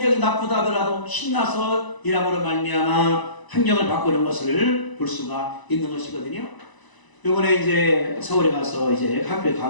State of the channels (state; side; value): late; right; 1.0 ms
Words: 나쁘다 하더라도 신나서 일함으로 말미암아 환경을 바꾸는 것을 볼 수가 있는 것이거든요. 이번에 이제 서울에 가서 이제 학교에